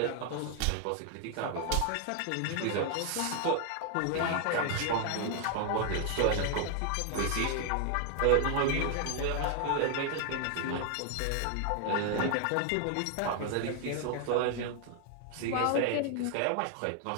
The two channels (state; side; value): different; both; correlation 0.00